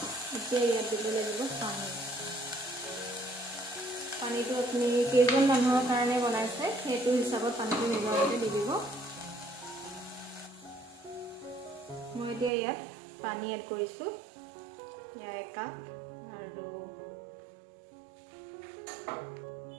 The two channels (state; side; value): drops out; left; at 12.5 s